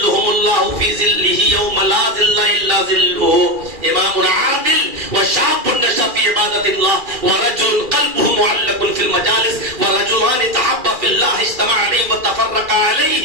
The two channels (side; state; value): left; late; 2.4 ms